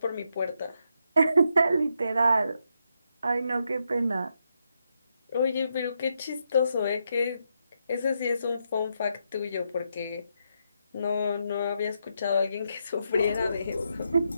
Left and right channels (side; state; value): both; inverted; correlation -0.81